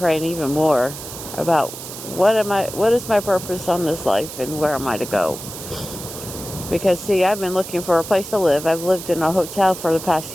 even more about what is my purpose on this life, and where am I to go? Because see, I've been looking for a place to live. I've lived in a hotel for the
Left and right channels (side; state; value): right; noise; hiss, 11 dB below the sound